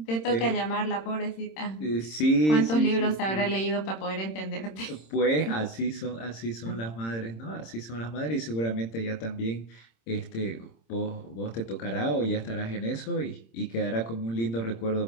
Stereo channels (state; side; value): late; right; 26 ms